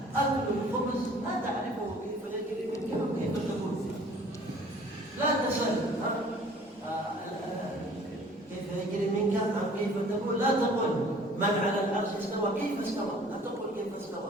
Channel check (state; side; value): normal; both; correlation 0.51